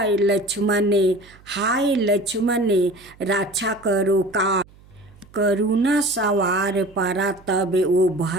लक्ष्मण, हाय लक्ष्मण, रक्षा करो का करुणा सवार पड़ा, तब वो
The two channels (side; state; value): right; noise; hum, 26 dB below the sound